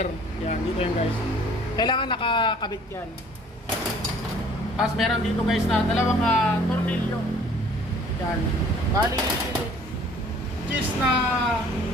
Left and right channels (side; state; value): both; normal; correlation 0.54